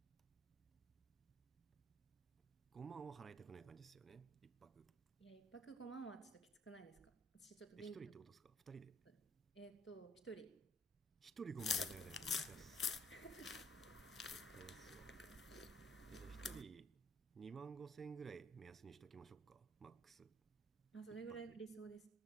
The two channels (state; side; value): normal; both; correlation 0.63